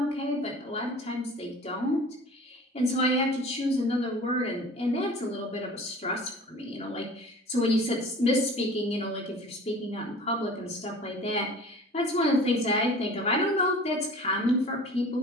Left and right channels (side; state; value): both; normal; correlation 0.43